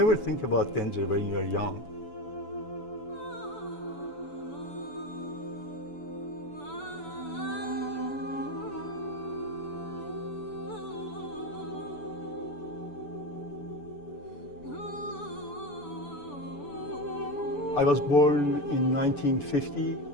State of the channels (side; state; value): right; late; 7.0 ms